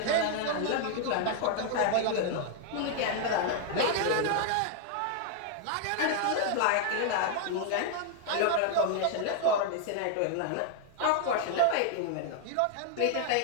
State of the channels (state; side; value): different; both; correlation 0.00